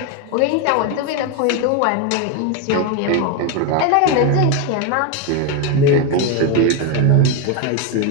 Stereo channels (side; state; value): both; different; correlation 0.02